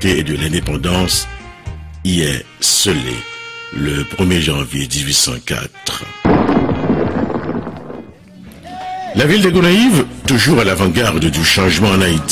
et de l'indépendance y est scellé le 1er janvier 1804. La ville de Gonaïves, toujours à l'avant-garde du changement en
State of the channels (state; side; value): identical; both; correlation 1.00